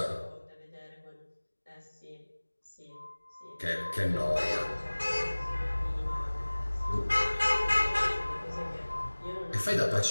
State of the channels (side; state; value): both; inverted; correlation -1.00